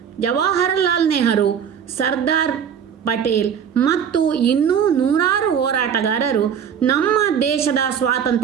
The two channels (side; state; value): left; quieter; 7.9 dB